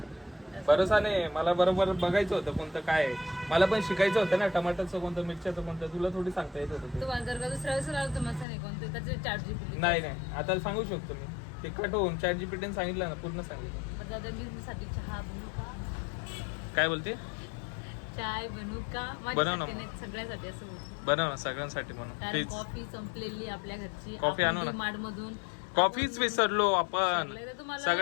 भरोसा नाही, मला बरोबर बघायचं होतं कोणतं काय आहे. मला पण शिकायचं होतं ना, टमाटरचं कोणतं, मिरच्याचं कोणतं, तुला थोडी सांगता येत होतं ते. तुम्हाला जर का दुसऱ्या वेळेस आलं तर मस्त नाही कोणतं त्याचे ChatGPT. नाही आता सांगू शकतो मी, ते कट होऊन ChatGPT सांगितलं ना, पूर्ण सांगितलं. पण दादा मी साठी चहा बनवू का? काय बोलते? चाय बनवू का? बनव ना. माझ्यासाठी नाही, सगळ्यासाठी असं बोलतो. बनव ना, सगळ्यांसाठी बनव कारण प्लीज. कॉफी संपलेली आपल्या घरची. कॉफी आणू ना. मार्ट मधून कॉफीच विसरलो आपण, विसरले तर तुम्हाला-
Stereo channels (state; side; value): drops out; right; at 8.5 s